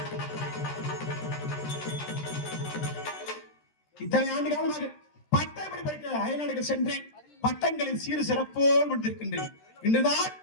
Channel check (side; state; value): right; late; 13 ms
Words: இத்தனை ஆண்டு காலமாக பட்டப்படி படிக்க அயல்நாடுகள் சென்றேன். பட்டங்களின் சீறு சிறப்போடு முடித்திருக்கின்றேன். இன்றுதான்